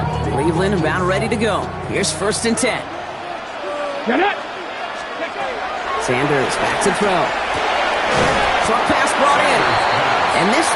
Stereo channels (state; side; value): identical; both; correlation 1.00